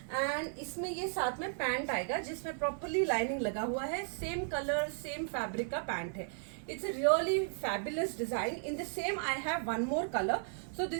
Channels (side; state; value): left; silent; 54 dB below the other